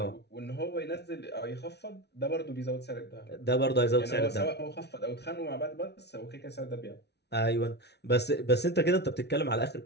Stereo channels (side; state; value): right; late; 0.49 ms